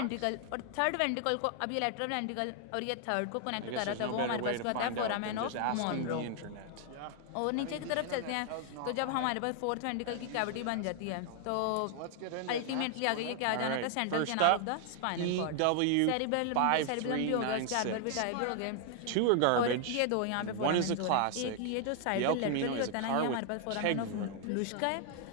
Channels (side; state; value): both; different; correlation 0.00